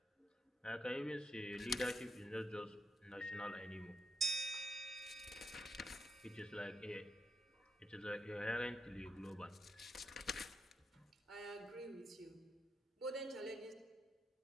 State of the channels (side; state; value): both; normal; correlation 0.83